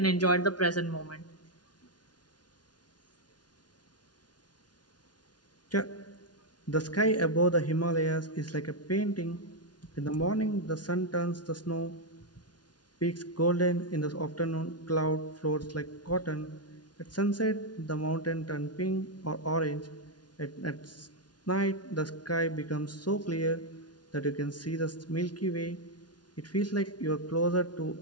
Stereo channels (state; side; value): late; right; 0.69 ms